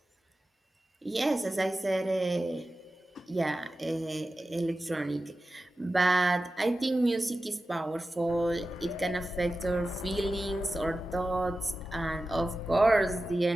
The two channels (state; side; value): normal; both; correlation 0.94